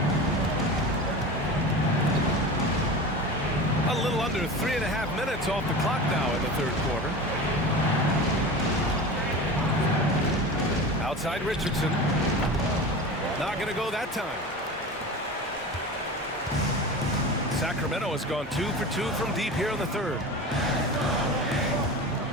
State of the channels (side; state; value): both; normal; correlation 0.31